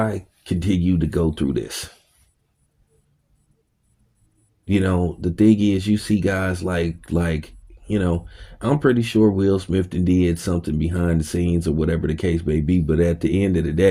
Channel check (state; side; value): identical; both; correlation 1.00